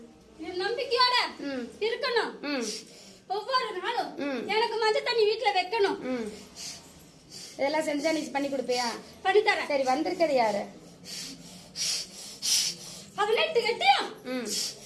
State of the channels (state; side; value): identical; both; correlation 1.00